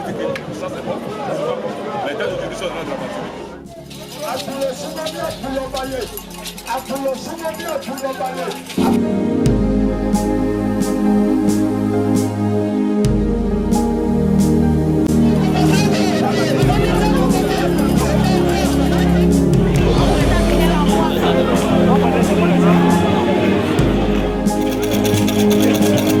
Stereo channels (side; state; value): both; identical; correlation 1.00